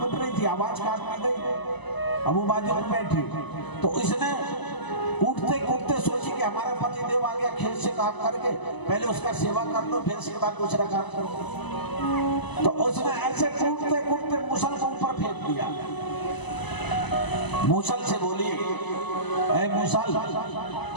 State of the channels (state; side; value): late; right; 1.0 ms